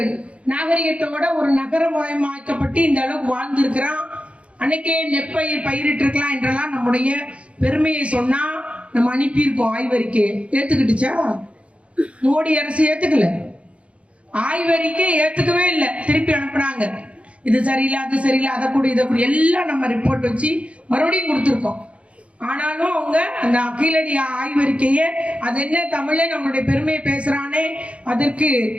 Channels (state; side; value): late; left; 0.061 ms